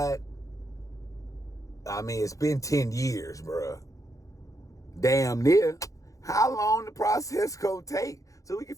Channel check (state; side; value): late; right; 0.16 ms